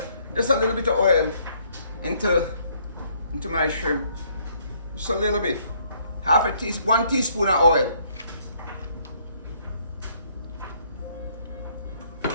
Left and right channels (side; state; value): both; inverted; correlation -0.66